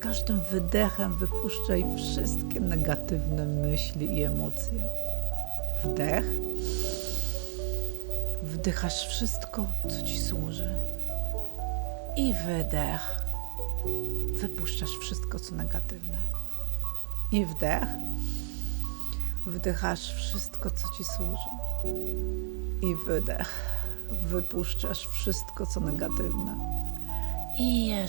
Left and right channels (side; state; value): left; silent; digital silence